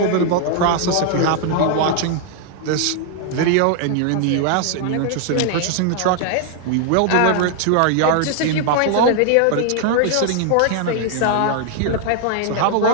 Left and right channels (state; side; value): different; both; correlation 0.00